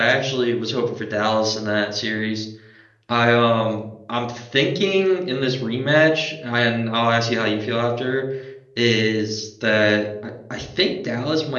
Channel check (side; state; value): both; identical; correlation 1.00